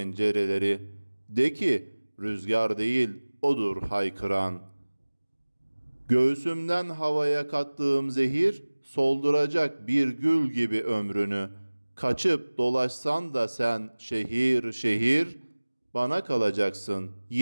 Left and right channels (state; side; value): inverted; both; correlation -1.00